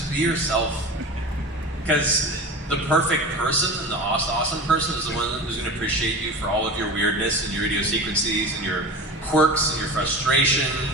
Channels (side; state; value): both; normal; correlation 0.31